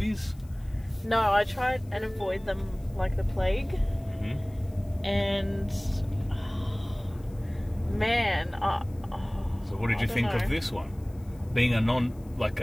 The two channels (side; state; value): left; noise; hiss, 29 dB below the sound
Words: No, I tried and avoid them like the plague. Mm-hmm. And... man, so what did you think of this one? Being a